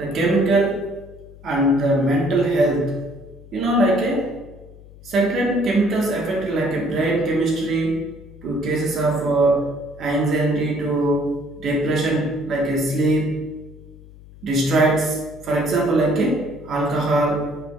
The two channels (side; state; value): left; noise; hum, 20 dB below the sound